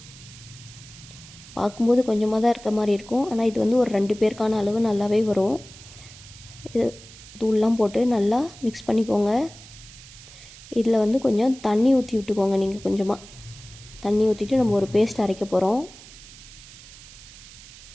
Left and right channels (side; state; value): right; noise; hiss, 19 dB below the sound